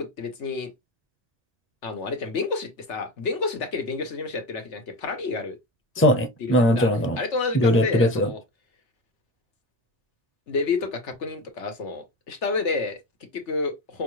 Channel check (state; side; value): normal; both; correlation 0.25